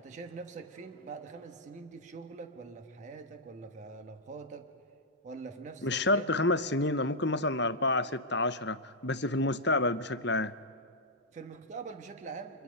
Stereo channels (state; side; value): normal; both; correlation -0.07